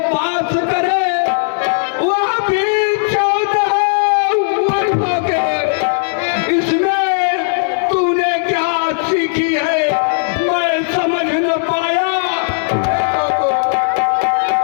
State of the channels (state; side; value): silent; right; digital silence